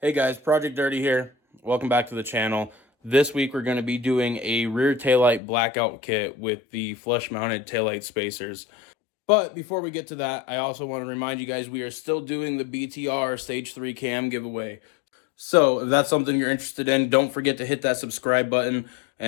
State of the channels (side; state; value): right; drops out; at 5.4 s